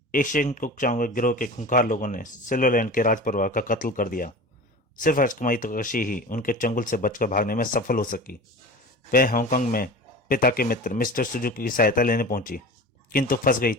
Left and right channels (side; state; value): both; normal; correlation 0.34